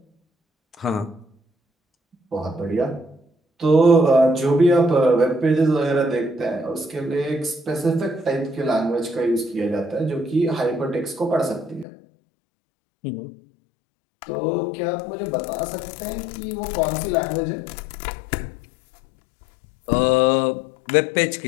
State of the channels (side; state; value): right; drops out; at 11.9 s